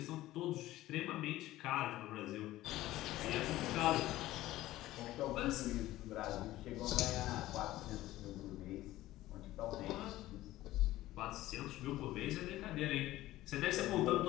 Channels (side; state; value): right; quieter; 15.9 dB